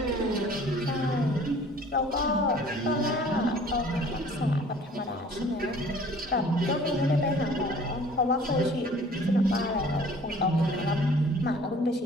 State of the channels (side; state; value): both; normal; correlation 0.51